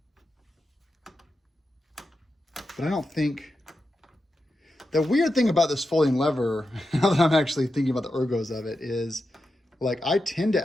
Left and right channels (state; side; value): normal; both; correlation 0.89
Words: But I don't think, the weird thing about this folding lever, now that I'm actually thinking about the ergos of it, is like I tend to